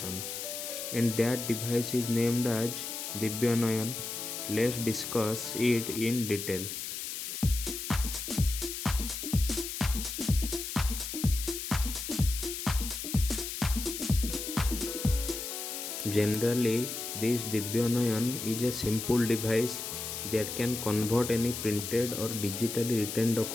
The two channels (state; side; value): noise; left; hiss, 6 dB below the sound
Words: and that device is named as Divyanayan. Let's discuss it in detail. Generally, this Divyanayan is a simple device that can convert any printed or digitally written